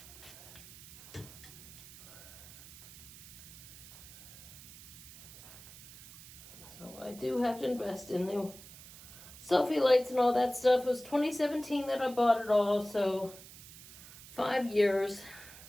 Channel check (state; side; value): noise; right; hiss, 17 dB below the sound